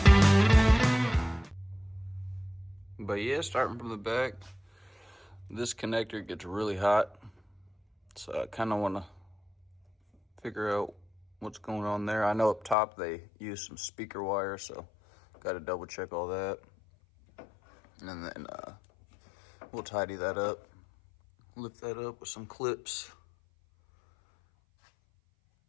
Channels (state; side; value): drops out; right; at 12.8 s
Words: But yeah, starting from the back, this connector gets really hot, so I kind of want to figure out what's going on there. I know up top they use some speaker wire, so got to double check all that. And then We'll tidy that up. Lift that up with some clips.